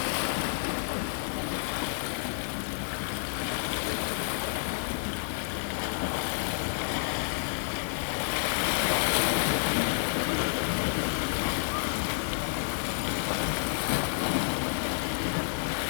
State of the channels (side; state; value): right; silent; digital silence